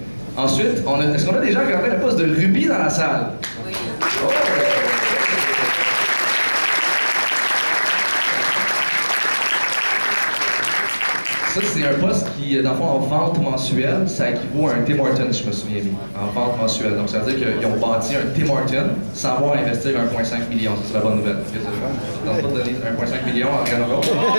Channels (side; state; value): both; inverted; correlation -1.00